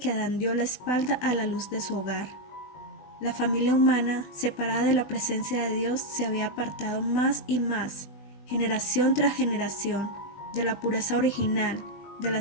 Adán dio la espalda a la luz de su hogar. La familia humana, separada de la presencia de Dios, se había apartado más y más, generación tras generación, de la pureza original, de la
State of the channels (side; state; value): right; late; 20 ms